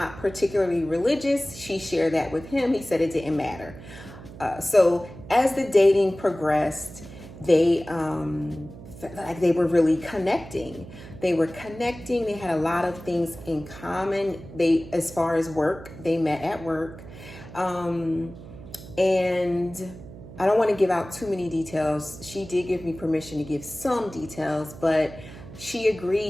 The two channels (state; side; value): noise; right; hum, 16 dB below the sound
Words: particularly religious. She shared that with him. He said it didn't matter. So as the dating progressed, they felt like they were really connecting. They were connecting. They had a lot of things in common. As far as work, they met at work. And I don't want to give out too many details. She did give me permission to give some details, but she